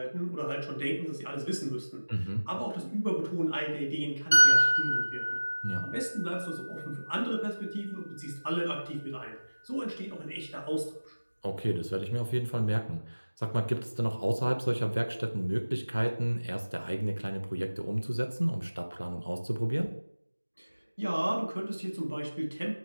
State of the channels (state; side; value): inverted; both; correlation -1.00